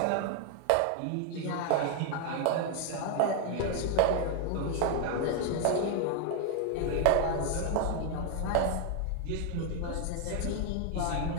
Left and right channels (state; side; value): different; both; correlation 0.00